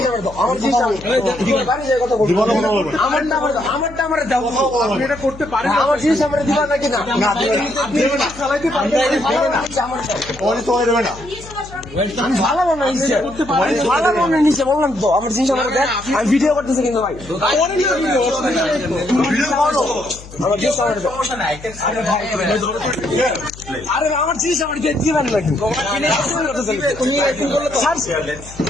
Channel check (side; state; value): left; noise; hum, 17 dB below the sound